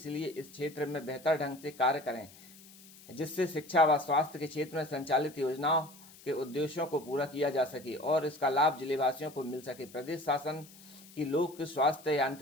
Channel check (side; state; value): left; noise; hiss, 21 dB below the sound